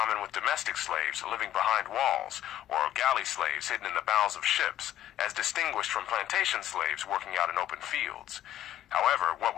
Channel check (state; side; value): quieter; right; 12.2 dB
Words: with domestic slaves living behind walls, or galley slaves hidden in the bowels of ships, as distinguished from plantation slaves working out in open fields. However, what